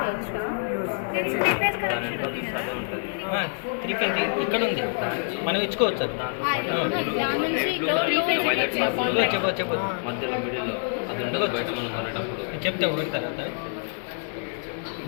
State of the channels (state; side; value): silent; right; 61 dB below the other